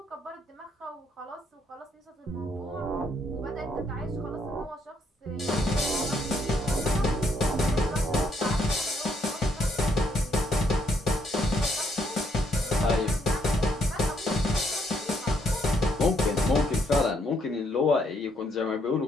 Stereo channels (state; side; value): normal; both; correlation 0.72